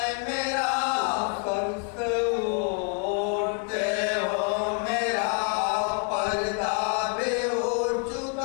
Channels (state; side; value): quieter; right; 37.6 dB